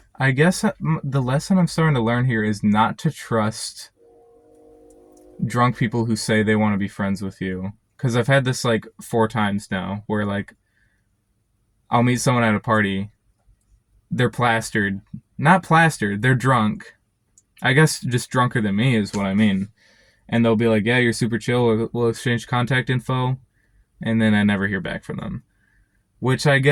I guess the lesson I'm starting to learn here is not to trust drunk people who say they want to be friends with you. Because I've had this like 4 times now where like I'll meet someone at a party. They're plastered. Not plastered, they're drunk. I guess just drunker than me is what I mean. And they'll be like, "Yeah, you're super chill. We'll exchange contact info." And then I never hear back from them. Which I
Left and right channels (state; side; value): identical; both; correlation 1.00